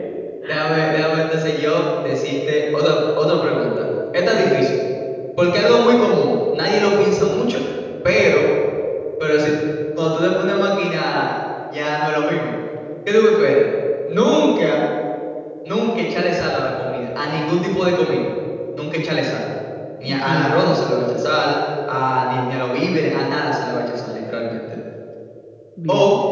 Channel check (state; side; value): identical; both; correlation 1.00